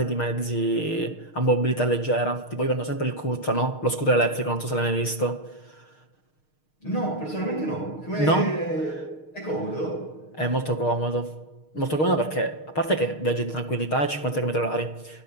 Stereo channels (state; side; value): late; right; 6.5 ms